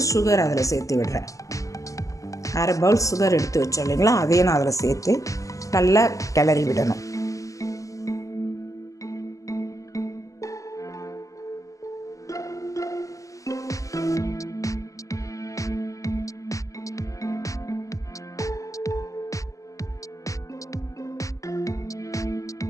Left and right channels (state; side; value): late; right; 0.16 ms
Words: சுகர் அதில் சேர்த்து விடுறேன். அரை பவுல் சுகர் எடுத்து வச்சோம் இல்லைங்களா, அதையும் நான் அதில் சேர்த்து நல்லா கிளறி விடணும்.